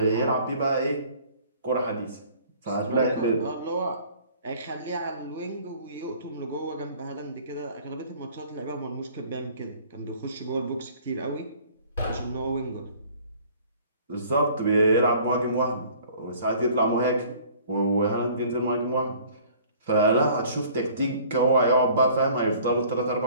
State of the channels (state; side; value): inverted; both; correlation -0.52